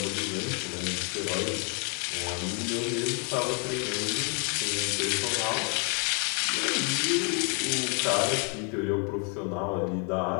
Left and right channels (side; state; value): right; quieter; 35.3 dB